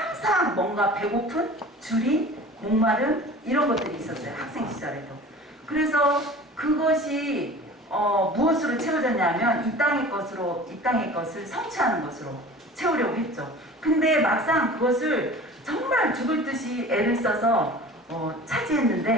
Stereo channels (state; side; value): normal; both; correlation 0.41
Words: 뭔가 배고픈, 줄인, 목마름 이런 것들이 있었어요. 학생 시절에도. 그래서 그것이 무엇으로 채워졌냐면 이 땅의 것을 성취하는 것으로 채우려고 했죠. 근데 막상 그것을 정말 죽을 듯이 애를 써서